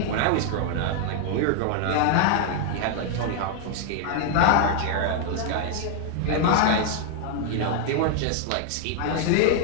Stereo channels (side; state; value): both; different; correlation 0.00